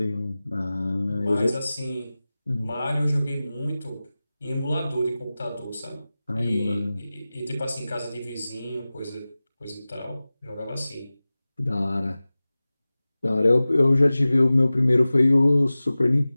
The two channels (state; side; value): inverted; both; correlation -0.97